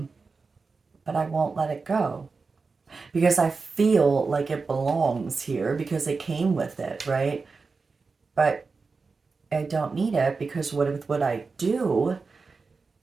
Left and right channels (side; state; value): left; quieter; 4.4 dB